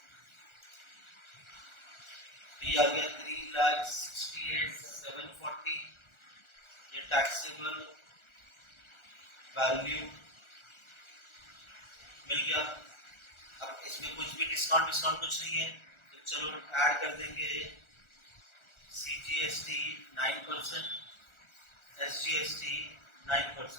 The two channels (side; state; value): right; late; 1.4 ms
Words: ये आ गया 3,68,740। ये टैक्सेबल वैल्यू मिल गया। अब इसमें कुछ भी डिस्काउंट कुछ नहीं है, तो चलो ऐड कर देंगे। सीजीएसटी 9%, एसजीएसटी